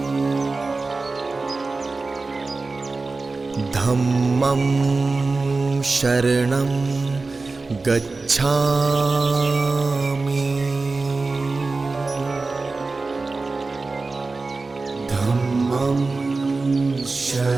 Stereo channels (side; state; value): left; quieter; 3.8 dB